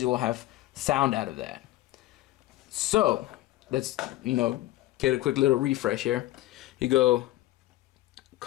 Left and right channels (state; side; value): quieter; right; 16.3 dB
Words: you will have sound out of that. So let's, you know, get a quick little refresh here. You go